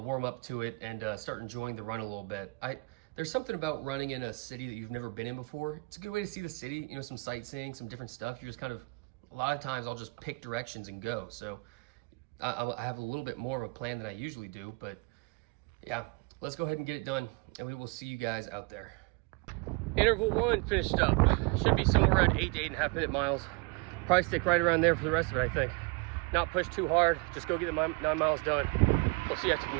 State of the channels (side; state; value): left; quieter; 29.6 dB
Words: warm up to it and start enjoying the run a little bit. There's something about running in a city that you've never been in before. It's a good way to see the city, you know, some sightseeing, some different stuff. You're just kind of, a lot of times I'll just pick directions and go. So I have a little bit more of a plan than I usually do, but yeah. Let's go ahead and get it done, and we will see you guys out there. Interval 1 finished up. Should be somewhere around 8 to 8.5 minute miles. Probably stick right around there for the rest of it, I think. Not push too hard, just go get the 9 miles done. We'll see you after the